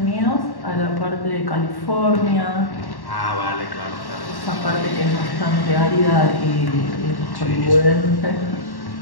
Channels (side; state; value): right; late; 1.1 ms